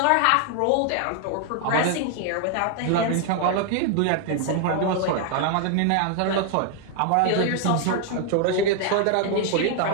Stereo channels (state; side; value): different; both; correlation 0.00